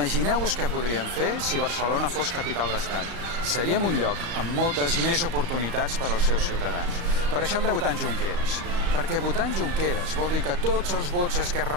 què podríem fer si Barcelona fos capital d'estat. Seríem un lloc amb moltes més oportunitats per als seus ciutadans. Per això hem de votar en Junqueras. Perquè votar en Junqueras vol dir que tots els vots d'Esquerra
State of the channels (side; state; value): left; late; 34 ms